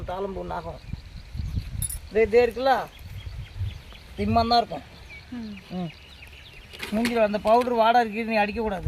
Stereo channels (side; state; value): both; identical; correlation 1.00